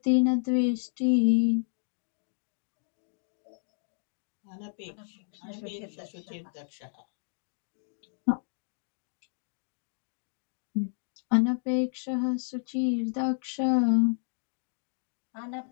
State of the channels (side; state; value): right; silent; 56 dB below the other